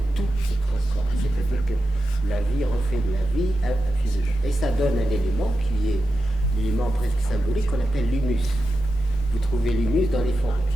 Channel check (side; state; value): both; normal; correlation 0.90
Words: tout se transforme. C'est-à-dire que la vie refait de la vie un physique. Et ça donne un élément qui est l'élément presque symbolique qu'on appelle l'humus. Vous trouvez l'humus dans les forêts.